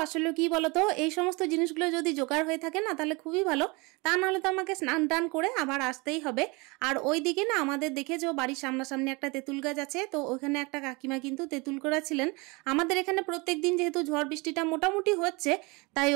আসলে কি বলতো, এই সমস্ত জিনিসগুলো যদি জোগাড় হয়ে থাকে না তাহলে খুবই ভালো, তা নাহলে তো আমাকে স্নান টান করে আবার আসতেই হবে। আর ওই দিকে না আমাদের দেখেছো বাড়ির সামনাসামনি একটা তেঁতুল গাছ আছে, তো ওখানে একটা কাকিমা কিন্তু তেঁতুল করেছিলেন। আমাদের এখানে প্রত্যেক দিন যেহেতু ঝড় বৃষ্টিটা মোটামুটি হচ্ছে, তাই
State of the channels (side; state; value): left; quieter; 26.9 dB